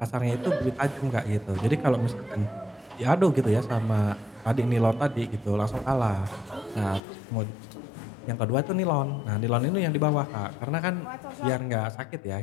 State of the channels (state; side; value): drops out; right; at 7.0 s